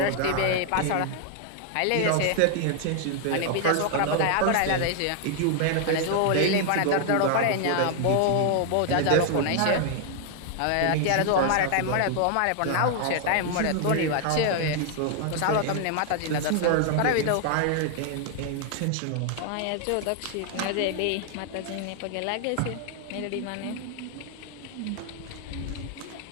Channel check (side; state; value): both; different; correlation 0.00